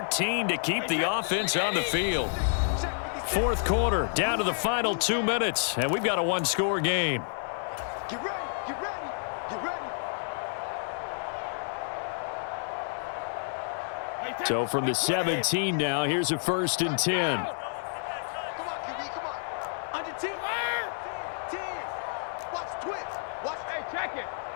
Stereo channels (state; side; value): silent; right; 58 dB below the other